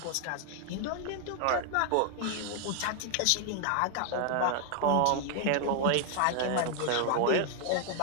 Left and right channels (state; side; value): different; both; correlation 0.00